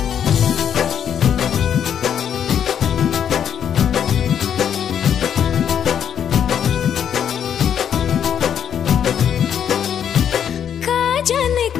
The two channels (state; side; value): quieter; right; 8.8 dB